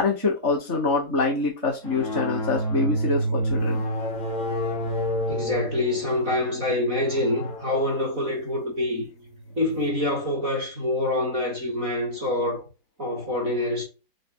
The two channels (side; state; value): left; late; 4.0 ms